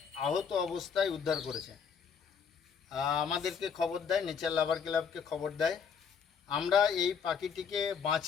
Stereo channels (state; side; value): quieter; right; 6.7 dB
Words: আহত অবস্থায় উদ্ধার করেছে। আমাদেরকে খবর দেয়, নেচার লাভার ক্লাবকে খবর দেয়। আমরা এই পাখিটিকে